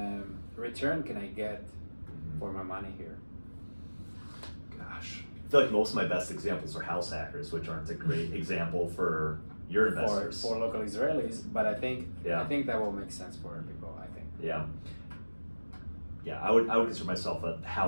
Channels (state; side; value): inverted; both; correlation -1.00